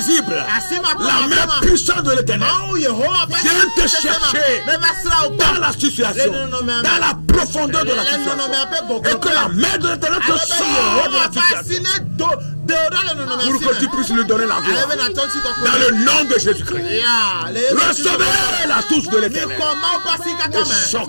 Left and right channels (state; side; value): inverted; both; correlation -1.00